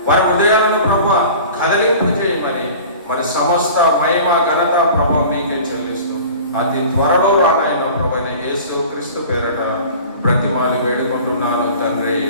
వారి హృదయాలను ప్రభా కదలింపు చేయమని మరి సమస్త మహిమ ఘనత ప్రభా మీకే చెల్లిస్తూ అతి త్వరలో రానాయన ప్రభు యేసు క్రీస్తు పేరట బ్రతిమాలి వేడుకుంటున్నాను తండ్రి,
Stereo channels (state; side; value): inverted; both; correlation -0.41